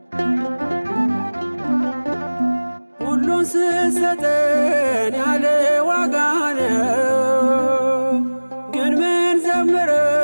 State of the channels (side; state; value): both; inverted; correlation -1.00